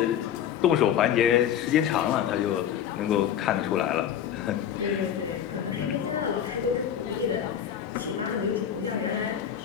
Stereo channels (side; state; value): right; quieter; 9.5 dB